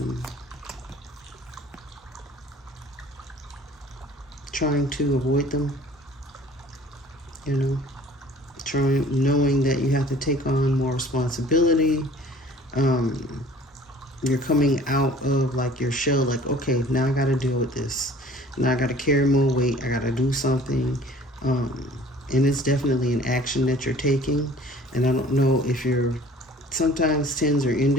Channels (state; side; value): normal; both; correlation 0.50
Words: trying to avoid them, you know, knowing that you have to take on more responsibility. You're coming out of like your shell, like, okay, now I got to deal with this. Now I got to carry more weight. I got to do something. And it's definitely an action that you're taking. And I don't know if you're, sometimes tens or